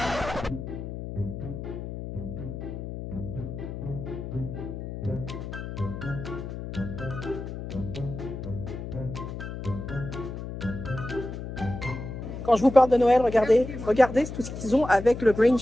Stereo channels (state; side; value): noise; left; hum, 8 dB below the sound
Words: Quand je vous parle de Noël, regardez, regardez tout ce qu'ils ont avec le